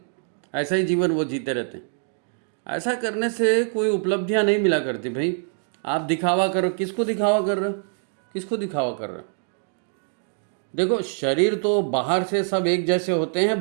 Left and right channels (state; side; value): silent; left; digital silence